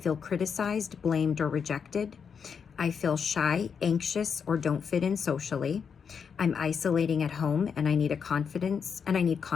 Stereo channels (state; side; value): quieter; right; 6.6 dB